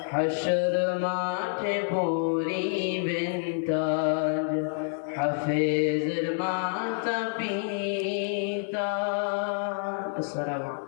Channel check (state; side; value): silent; right; 58 dB below the other